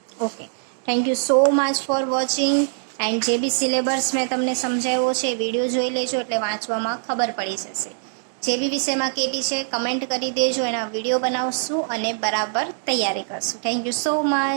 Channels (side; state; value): left; silent; digital silence